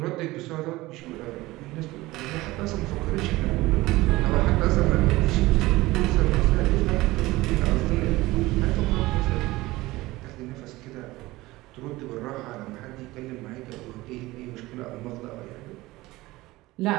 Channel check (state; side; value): quieter; left; 19.2 dB